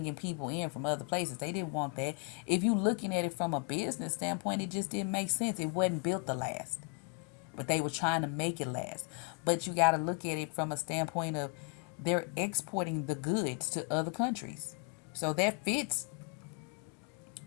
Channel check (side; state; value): right; quieter; 36.7 dB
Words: people in from other places. They didn't want that. If you looking at it from a business standpoint, it just didn't make sense. It wasn't built to last. But they were trying to make it last. But you got to look at it from a standpoint of they're exporting the goods to other countries. So that fits.